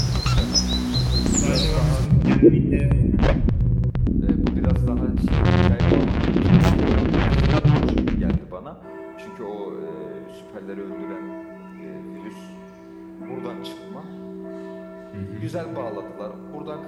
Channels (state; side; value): identical; both; correlation 1.00